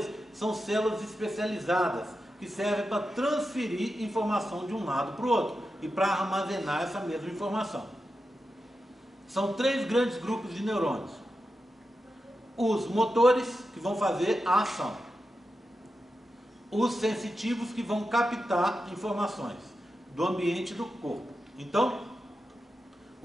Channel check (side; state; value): both; normal; correlation 0.90